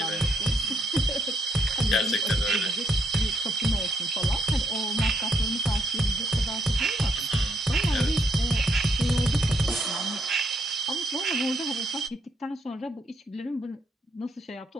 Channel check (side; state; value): both; normal; correlation 0.72